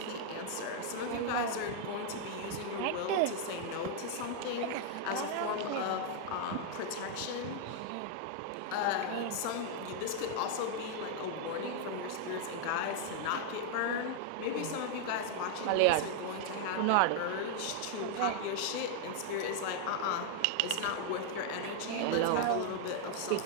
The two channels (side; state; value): both; different; correlation 0.00